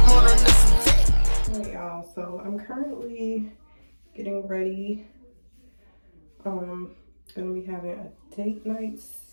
Alright, y'all, so I'm currently getting ready. Gonna be having a date night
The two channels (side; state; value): both; inverted; correlation -1.00